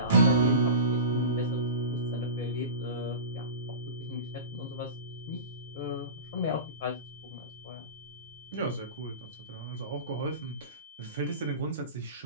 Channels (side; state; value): both; inverted; correlation -0.31